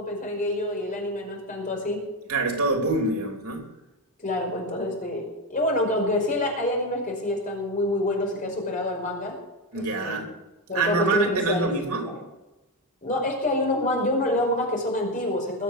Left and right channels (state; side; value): normal; both; correlation 0.12